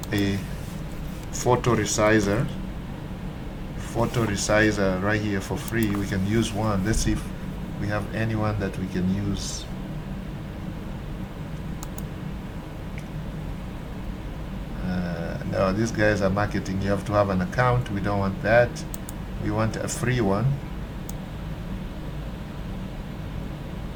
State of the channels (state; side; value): identical; both; correlation 1.00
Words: a photo resizer right here for free. We can use one. Let's see if we have anyone that we can use. No, these guys are marketing. You have to have an account. We don't want that. We want a free one.